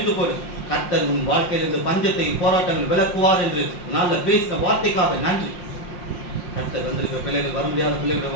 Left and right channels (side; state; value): right; late; 5.6 ms